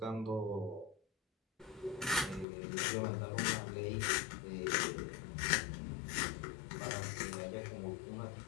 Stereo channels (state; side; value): drops out; right; at 2.5 s